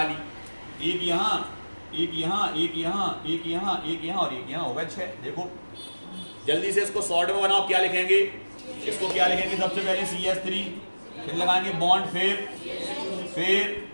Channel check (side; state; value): both; inverted; correlation -1.00